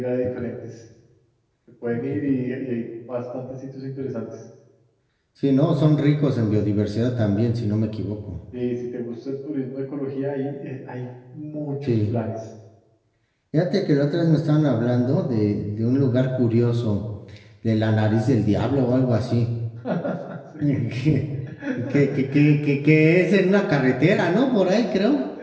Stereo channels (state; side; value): identical; both; correlation 1.00